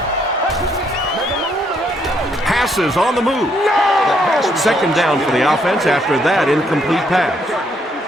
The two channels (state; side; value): normal; both; correlation 0.72